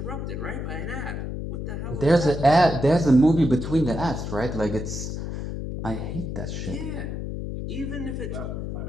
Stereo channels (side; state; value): left; noise; hum, 5 dB below the sound